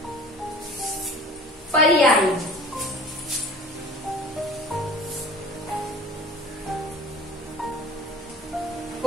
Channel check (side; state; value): both; normal; correlation 0.44